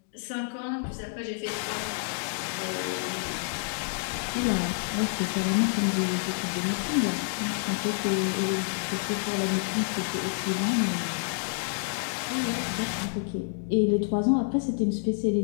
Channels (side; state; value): right; silent; digital silence